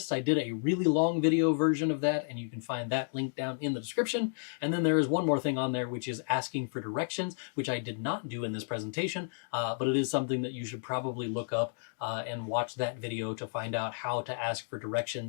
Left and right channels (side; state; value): right; silent; digital silence